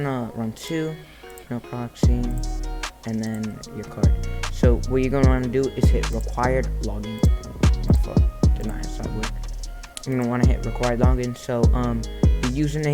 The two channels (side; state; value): both; identical; correlation 1.00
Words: run 2, no proxy, and then your card. So what you're gonna wanna do is hit required login. My fault, did not hit Cyborg. You're gonna wanna hit required login. So the